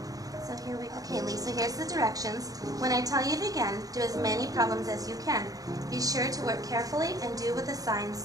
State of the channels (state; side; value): late; left; 0.18 ms